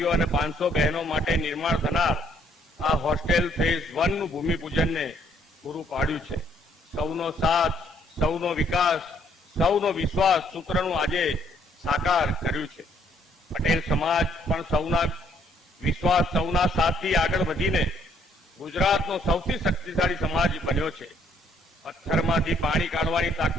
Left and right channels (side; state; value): both; normal; correlation 0.66